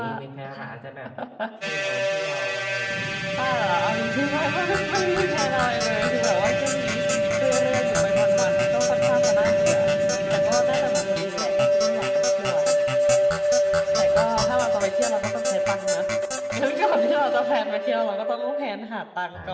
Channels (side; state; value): both; identical; correlation 1.00